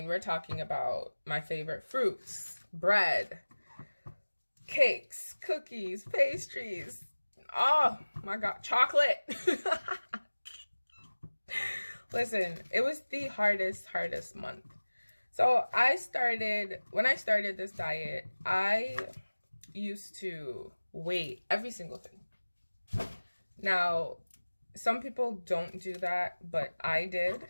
we're talking about my favorite fruits, bread, cakes, cookies, pastries. Oh my God, chocolate. Listen, it was the hardest month. So when I started this diet, I used to weigh every single thing. Now, some people don't do that, but I did.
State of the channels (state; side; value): inverted; both; correlation -1.00